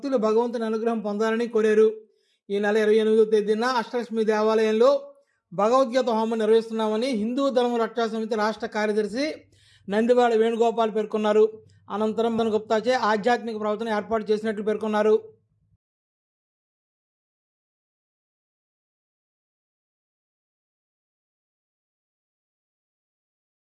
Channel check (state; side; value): identical; both; correlation 1.00